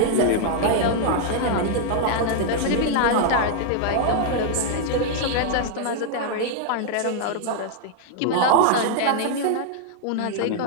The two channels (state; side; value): different; both; correlation 0.00